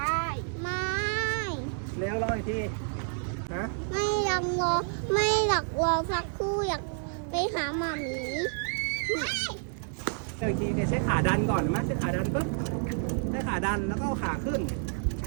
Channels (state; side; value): silent; left; 58 dB below the other